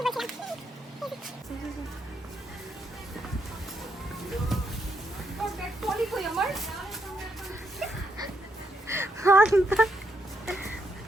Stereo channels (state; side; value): normal; both; correlation 0.77